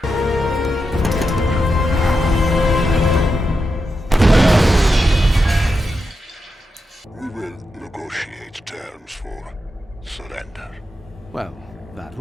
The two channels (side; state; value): both; normal; correlation 0.87